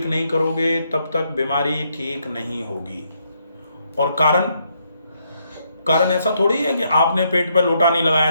नहीं करोगे तब तक बीमारी ठीक नहीं होगी। और कारण ऐसा थोड़ी है कि आपने पेट पे लोटा नहीं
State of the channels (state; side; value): inverted; both; correlation -0.75